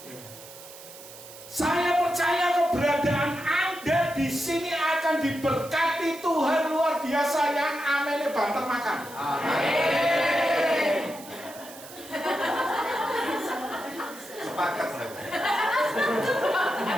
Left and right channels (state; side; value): noise; right; hiss, 17 dB below the sound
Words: Saya percaya keberadaan Anda di sini akan diberkati Tuhan luar biasa yang amennya banter makan. Amin. Sepakat saya.